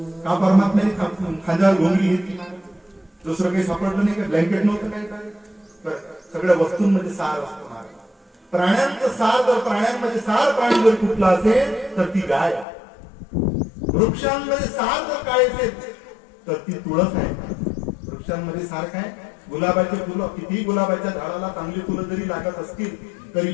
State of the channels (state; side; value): drops out; right; at 12.7 s